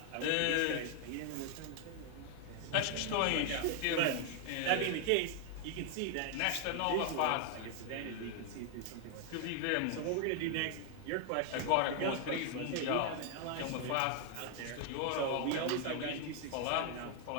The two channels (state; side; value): different; both; correlation 0.00